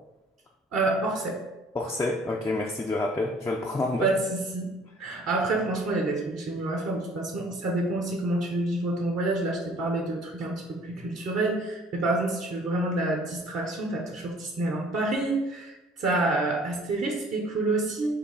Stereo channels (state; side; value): normal; both; correlation 0.55